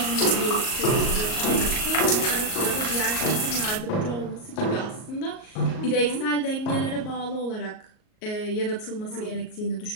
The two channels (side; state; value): right; late; 38 ms